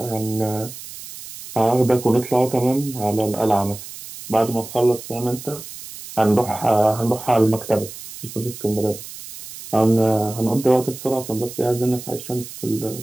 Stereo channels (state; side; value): noise; right; hiss, 13 dB below the sound